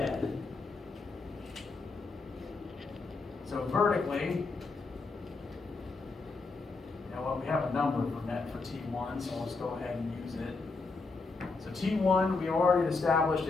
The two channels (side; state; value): right; quieter; 3.9 dB